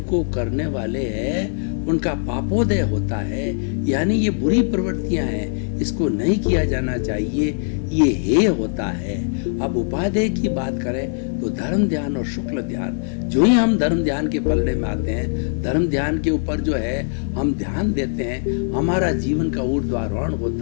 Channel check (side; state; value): right; silent; digital silence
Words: करने वाले हैं, उनका पापोदय होता है, यानी ये बुरी प्रवृत्तियां हैं, इसको नहीं किया जाना चाहिए, ये हे होता है। अब उपादेय की बात करें तो धर्म ध्यान और शुक्ल ध्यान, जो ही हम धर्म ध्यान के पलड़े में आते हैं, धर्म ध्यान के ऊपर जो है हम ध्यान देते हैं, हमारा जीवन का ऊर्ध्वारोहण